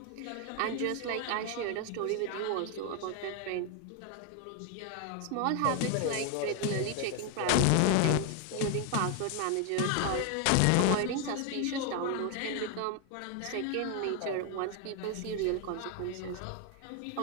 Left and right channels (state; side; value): different; both; correlation 0.01